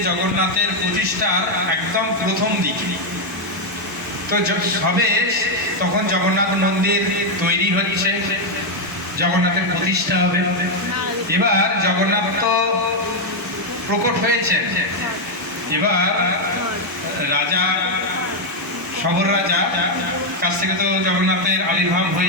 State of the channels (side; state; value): both; normal; correlation 0.01